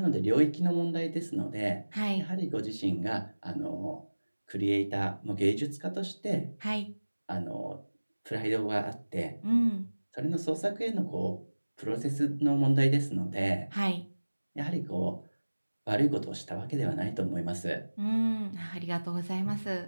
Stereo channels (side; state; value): both; inverted; correlation -1.00